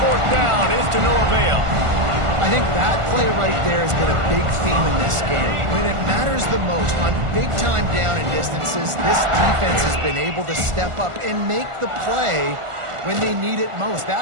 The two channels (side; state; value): left; late; 1.4 ms